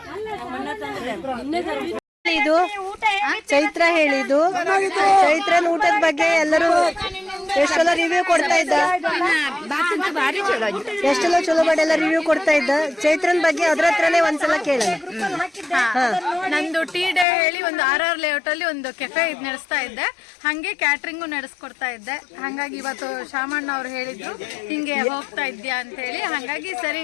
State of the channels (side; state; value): right; drops out; at 17.2 s